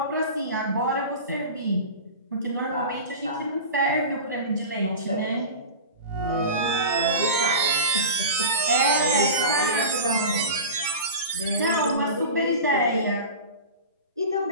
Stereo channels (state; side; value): inverted; both; correlation -0.31